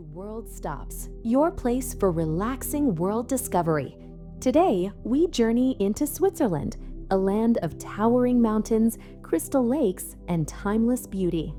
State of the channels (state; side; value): identical; both; correlation 1.00